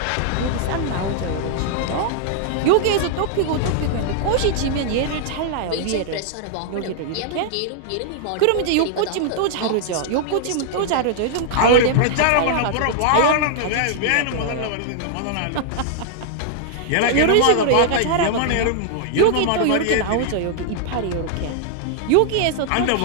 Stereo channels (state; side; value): different; both; correlation -0.01